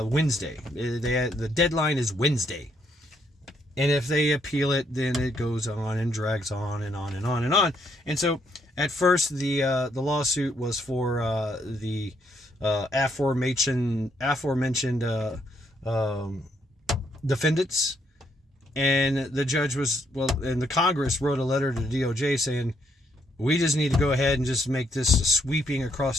The deadline is Wednesday. And if they appeal it, then it goes on and drags on and on and on and on. And so at first the lawsuit was for the aforementioned defendants. And the judge and the Congress wrote a letter to the DOJ saying, we just need to go ahead and just make this sweeping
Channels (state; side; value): normal; both; correlation 0.73